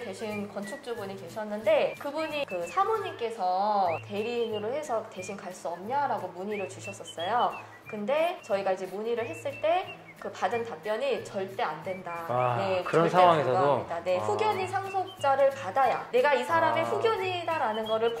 건축주분이 계셨는데, 그분이 그 사모님께서 대리인으로 해서 대신 갈 수 없냐라고 문의를 주셨었어요. 근데 저희가 이제 문의를 했을 때 그 받은 답변이 절대 안 된다. 네, 그런 절대 상황에서도? 불가합니다. 네, 후견인 상속자를 받아야, 내가 이 사람의 후견인이다라는 거를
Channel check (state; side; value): identical; both; correlation 1.00